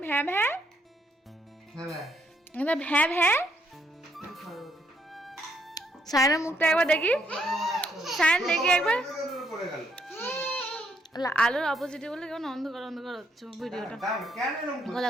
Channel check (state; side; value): normal; both; correlation 0.73